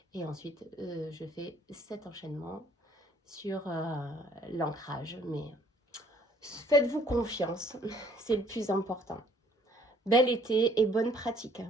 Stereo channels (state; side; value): normal; both; correlation 0.61